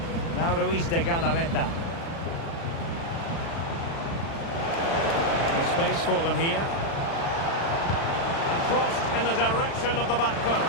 Now Ruiz de Galarreta. No space for them here. And crossed in the direction of the back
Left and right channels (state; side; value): late; right; 36 ms